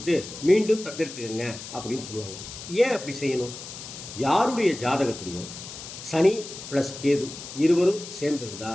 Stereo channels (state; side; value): noise; left; hiss, 12 dB below the sound